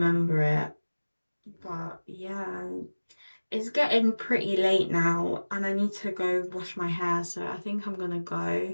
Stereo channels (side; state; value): both; inverted; correlation -1.00